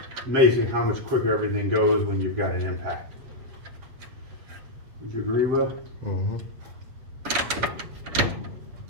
Amazing how much quicker everything goes when you've got an impact. Would you agree, Will? Mm-hmm.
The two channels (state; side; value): late; left; 7.4 ms